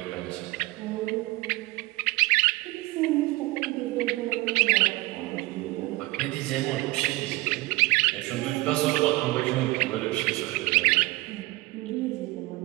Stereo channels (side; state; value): left; quieter; 21.2 dB